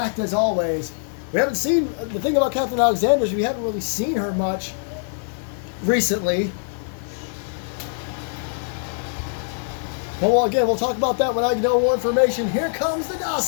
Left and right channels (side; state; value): right; silent; digital silence